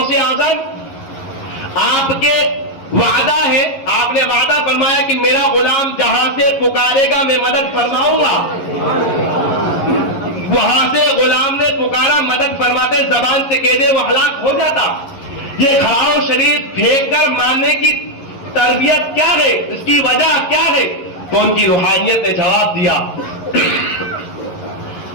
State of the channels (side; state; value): right; late; 11 ms